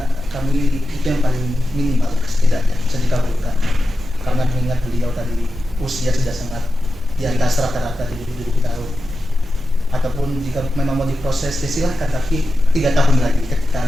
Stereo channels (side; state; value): both; normal; correlation 0.92